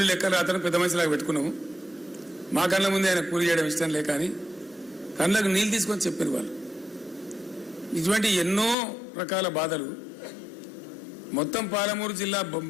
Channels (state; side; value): drops out; right; at 8.8 s